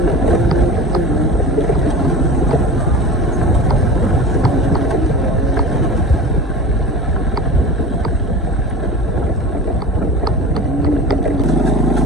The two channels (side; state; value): both; normal; correlation 0.34